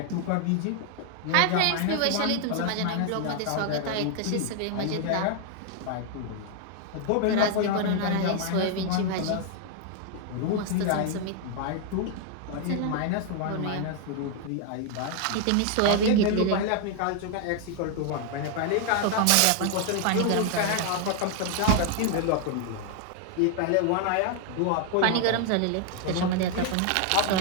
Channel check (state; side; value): different; both; correlation 0.00